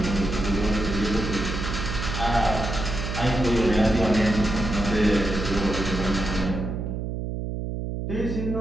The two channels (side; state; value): right; noise; hum, 4 dB below the sound